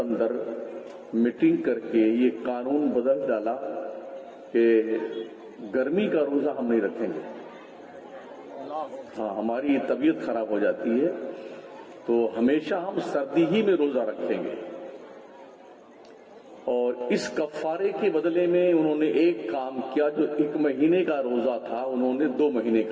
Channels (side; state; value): both; identical; correlation 1.00